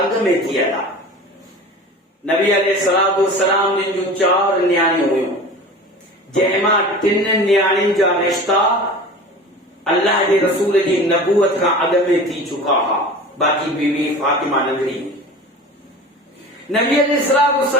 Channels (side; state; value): both; normal; correlation 0.37